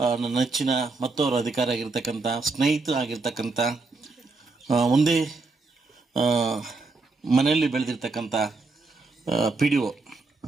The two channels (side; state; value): left; quieter; 3.7 dB